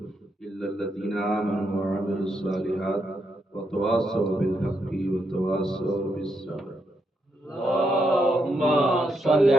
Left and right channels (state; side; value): normal; both; correlation 0.80